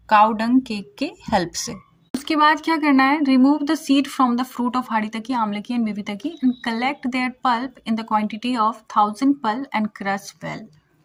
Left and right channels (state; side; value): identical; both; correlation 1.00